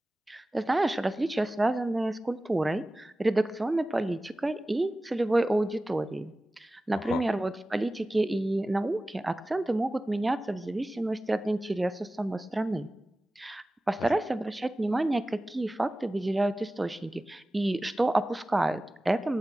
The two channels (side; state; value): both; normal; correlation 0.96